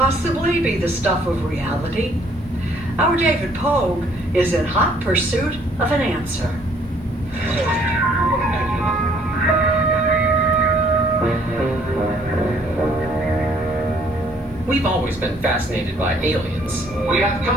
be the stuff of reality? Our David Pogue is in hot pursuit of an answer. We've always been fascinated by aliens. We have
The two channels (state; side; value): normal; both; correlation 0.63